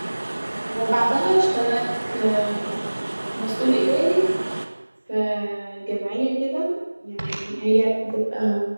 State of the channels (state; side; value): inverted; both; correlation -1.00